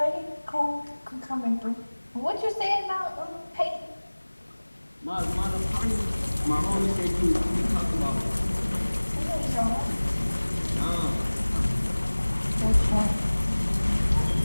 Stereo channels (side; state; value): both; inverted; correlation -1.00